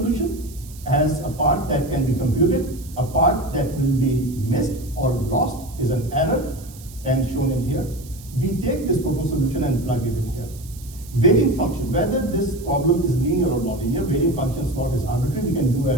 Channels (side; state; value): right; noise; hiss, 20 dB below the sound